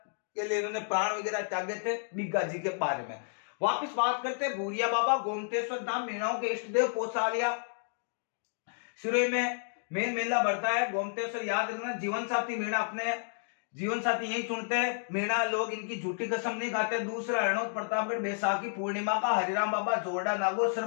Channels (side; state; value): right; silent; digital silence